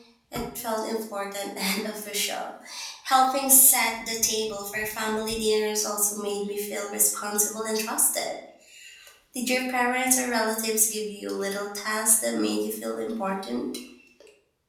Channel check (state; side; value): identical; both; correlation 1.00